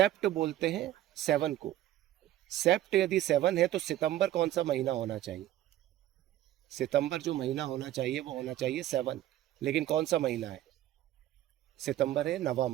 बोलते हैं 7 को। सेप्ट यदि 7 है तो सितंबर कौन सा महीना होना चाहिए? सितंबर जो महीना होना चाहिए वो होना चाहिए 7। लेकिन कौन सा महीना है? सितंबर है 9वां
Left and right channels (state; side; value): quieter; left; 13.5 dB